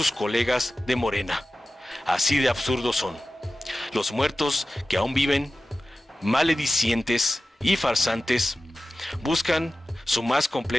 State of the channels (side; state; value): both; normal; correlation 0.94